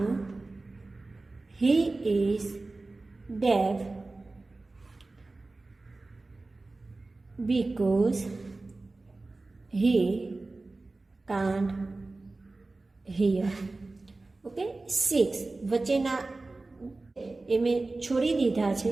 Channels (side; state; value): left; quieter; 3.3 dB